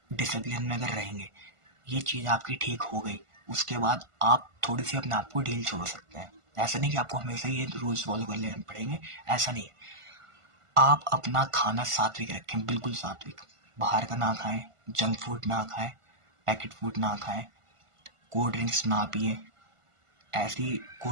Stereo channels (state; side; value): late; left; 1.5 ms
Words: डिसिप्लिन में अगर रहेंगे, ये चीज़ आपकी ठीक हो गई, उसके बाद आप थोड़ी सी अपने आप को ढील छोड़ सकते हैं। ऐसा नहीं कि आपको हमेशा ये रूल्स फॉलो कर लेने पड़ेंगे, ऐसा नहीं है। आप अपना खाना सात्विक रखें, बिल्कुल सात्विक। बाहर का ना खाएं, जंक फूड ना खाएं, पैकेट फूड ना खाएं, कोल्ड ड्रिंक्स ना पिए, ऐसी